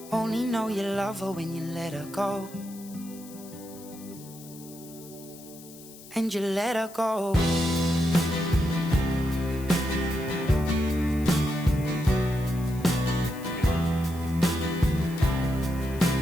Only know you love her when you let her go. And you let her go.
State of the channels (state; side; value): noise; left; hiss, 19 dB below the sound